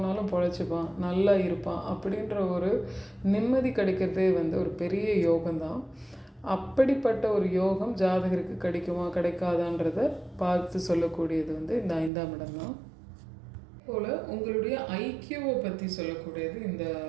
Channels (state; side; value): drops out; left; at 12.1 s